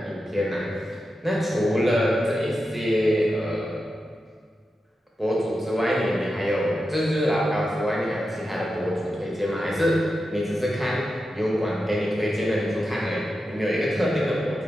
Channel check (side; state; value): both; normal; correlation 0.89